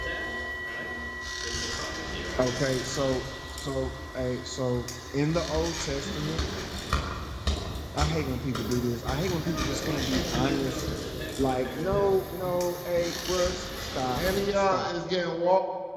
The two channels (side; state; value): both; identical; correlation 1.00